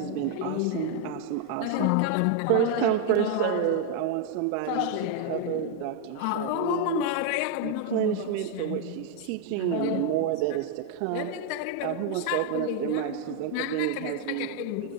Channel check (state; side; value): different; both; correlation 0.01